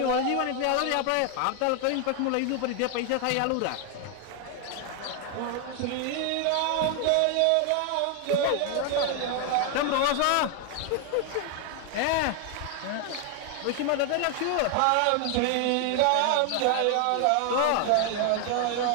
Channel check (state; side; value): different; both; correlation 0.01